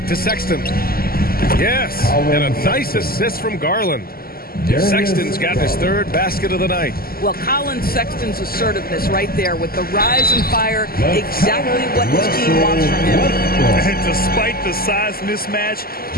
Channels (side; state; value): right; late; 0.43 ms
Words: to Sexton. Yes, and a nice assist from Garland. Sexton's got his 3rd basket of the night. Well, Colin Sexton's assertiveness right there with the rise and fire, exactly what his team wants from him. And despite the size mismatch,